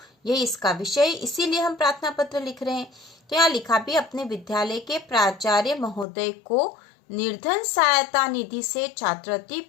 यही इसका विषय, इसीलिए हम प्रार्थना पत्र लिख रहे हैं। तो यहाँ लिखा भी अपने विद्यालय के प्राचार्य महोदय को निर्धन सहायता निधि से छात्रवृत्ति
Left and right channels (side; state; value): right; drops out; at 6.1 s